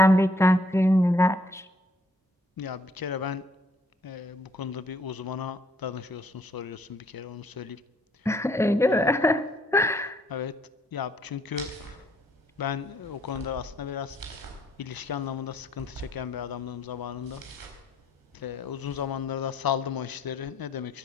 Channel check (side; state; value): both; normal; correlation 0.66